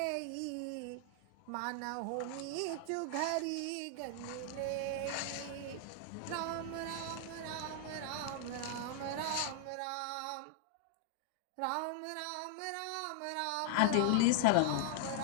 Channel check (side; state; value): both; different; correlation 0.00